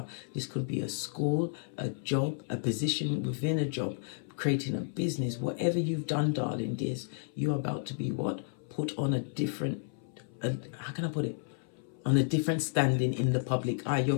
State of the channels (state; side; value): silent; right; 56 dB below the other